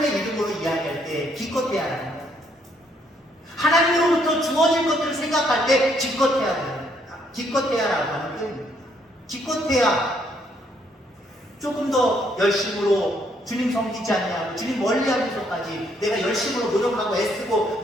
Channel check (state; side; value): normal; both; correlation 0.70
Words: 이름으로 이야기할 때 기껏해야라는 거예요. 하나님으로부터 주어질 것들을 생각할 때 기껏해야라고 하는 표현입니다. 기껏해야 조금 더 열심으로 주님 섬기지 않냐고 주님 멀리하면서까지 내가 열심으로 노력하고 애쓰고